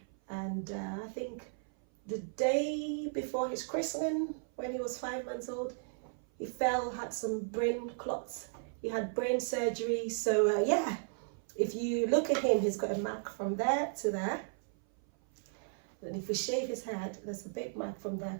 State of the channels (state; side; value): silent; left; 54 dB below the other